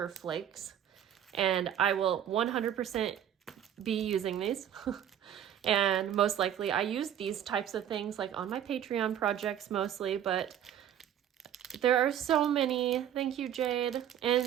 flakes, and I will 100% be using these. And most likely I use these types of things like on my Patreon projects mostly, but there are so many. Thank you, Jade.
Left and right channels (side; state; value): left; quieter; 10.2 dB